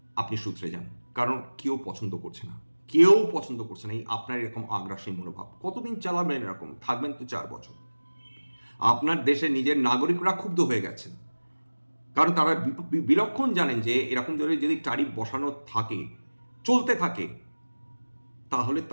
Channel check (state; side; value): inverted; both; correlation -1.00